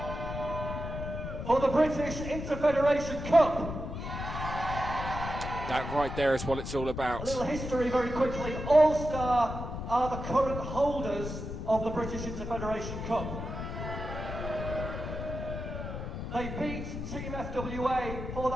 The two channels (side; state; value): left; noise; rumble, 6 dB below the sound